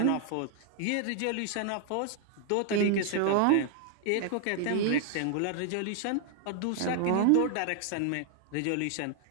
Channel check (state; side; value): different; both; correlation 0.00